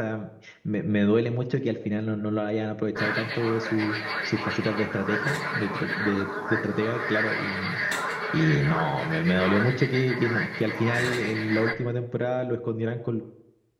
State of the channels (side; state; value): both; identical; correlation 1.00